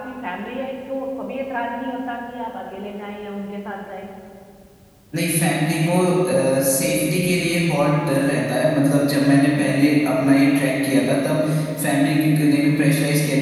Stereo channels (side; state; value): both; identical; correlation 1.00